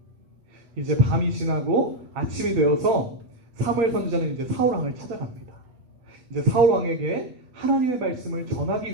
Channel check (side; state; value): left; late; 8.2 ms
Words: 이제 밤이 지나고 아침이 되어서 사무엘 선지자는 이제 사울 왕을 찾아갑니다. 이제 사울 왕에게 하나님의 말씀을